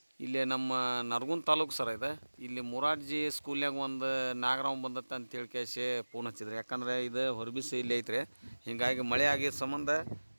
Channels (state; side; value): inverted; both; correlation -1.00